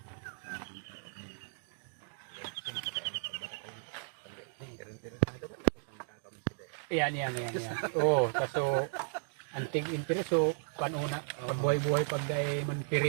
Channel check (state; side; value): silent; left; digital silence